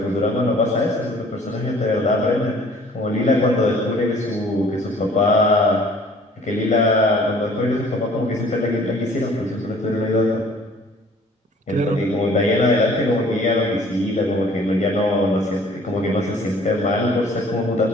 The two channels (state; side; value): normal; both; correlation 0.54